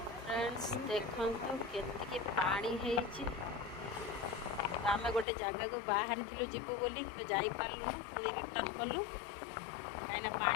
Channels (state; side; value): drops out; right; at 5.2 s